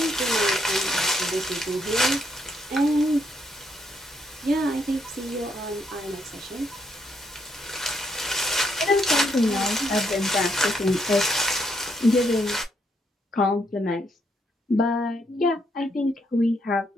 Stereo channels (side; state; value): both; normal; correlation 0.74